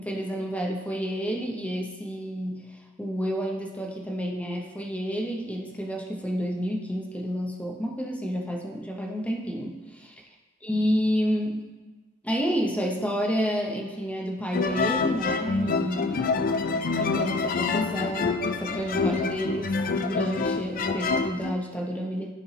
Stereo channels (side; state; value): both; normal; correlation 0.59